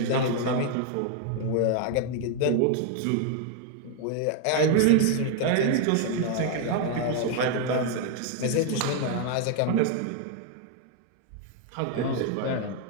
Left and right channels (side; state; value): both; different; correlation 0.00